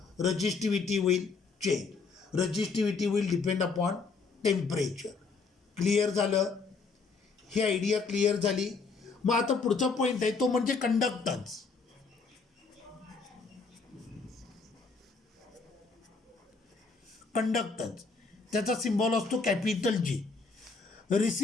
रजिस्टिव्हिटी will change. Resistivity will depend upon temperature. Clear झालं. ही आयडिया क्लिअर झाली. मग आता पुढचा पॉईंट आहे तो म्हणजे कंडक्टन्स. कंडक्टन्स त्याचा सिम्बॉल असतो capital G.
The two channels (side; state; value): right; quieter; 4.6 dB